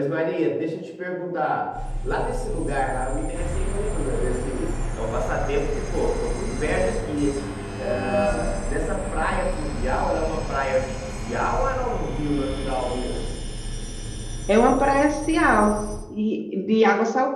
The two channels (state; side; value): identical; both; correlation 1.00